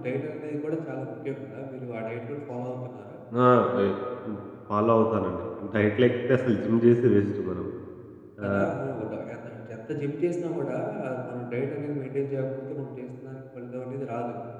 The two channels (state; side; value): identical; both; correlation 1.00